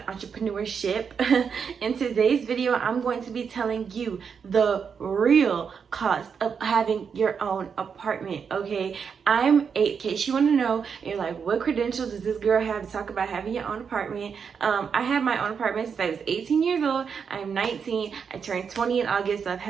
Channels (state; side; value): quieter; left; 6.5 dB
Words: entrepreneurship. In today's video, I'm going to be telling you the real cost of having your own apartment, okay? I'm 8, in case you want to know, you're like, what credentials does this girl have to talk about having your own apartment? I have my own apartment since I was 18 years old. I'm 19. I turned 20 in August, so I've